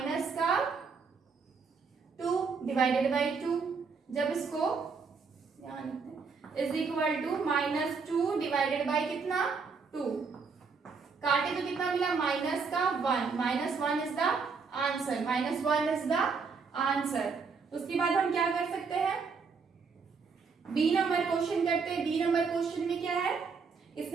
का 2/2। जब इसको is equal to minus 2 divided by कितना? 2। काटे तो कितना मिला? माइनस का 1। -1 is the answer. -1 is the answer. उसके बाद हम क्या कर सकते हैं? बी नंबर क्वेश्चन करते हैं। बी नंबर क्वेश्चन में क्या है?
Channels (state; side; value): quieter; left; 5.1 dB